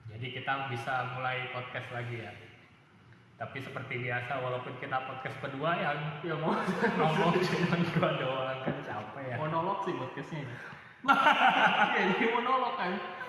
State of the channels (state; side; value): identical; both; correlation 1.00